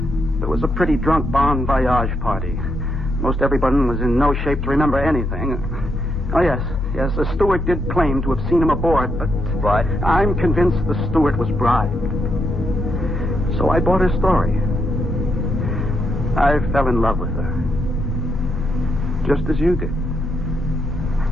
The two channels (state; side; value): normal; both; correlation 0.79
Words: there was a pretty drunk bon voyage party. Most everyone was in no shape to remember anything. Oh, yes, the steward did claim to have seen him aboard, but... What? I'm convinced the steward was bribed. So I bought her story. I fell in love with her. Just as you did.